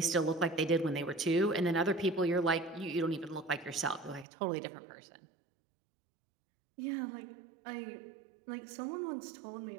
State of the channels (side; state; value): left; drops out; at 4.2 s